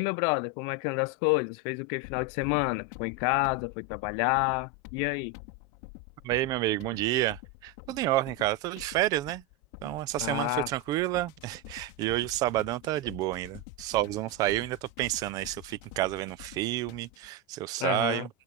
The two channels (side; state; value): both; normal; correlation 0.07